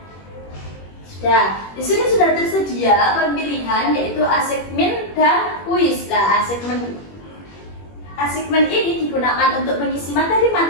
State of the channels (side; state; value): right; late; 21 ms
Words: Di sini sudah tersedia pemilihan yaitu assignment dan kuis. Assignment ini digunakan untuk mengisi